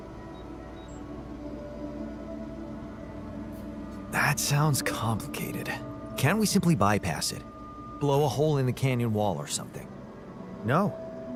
That sounds complicated. Can't we simply bypass it? Blow a hole in the canyon wall or something? No,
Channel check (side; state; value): both; identical; correlation 1.00